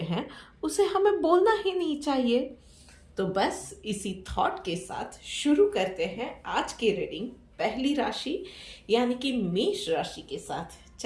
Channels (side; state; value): both; identical; correlation 1.00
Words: उसे हमें बोलना ही नहीं चाहिए। तो बस इसी थॉट के साथ शुरू करते हैं आज की रीडिंग पहली राशि यानी कि मेष राशि के साथ।